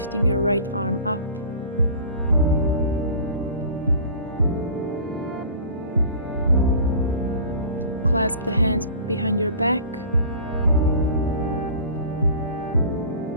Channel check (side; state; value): both; inverted; correlation -0.42